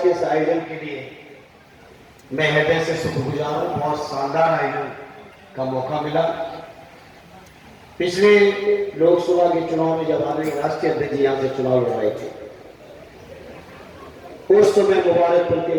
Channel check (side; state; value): both; identical; correlation 1.00